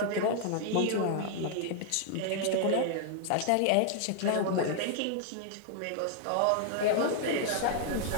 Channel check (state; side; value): different; both; correlation 0.00